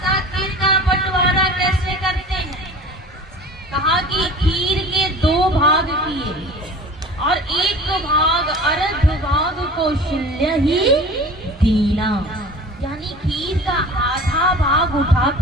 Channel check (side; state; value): both; normal; correlation 0.40